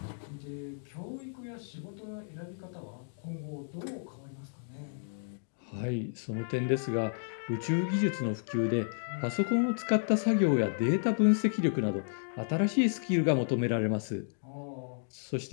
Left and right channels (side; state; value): right; silent; digital silence